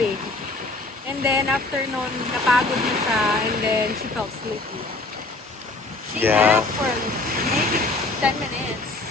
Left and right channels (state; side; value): quieter; right; 3.2 dB